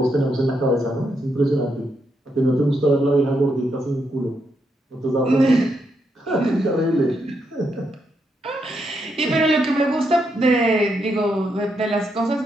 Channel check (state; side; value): normal; both; correlation 0.80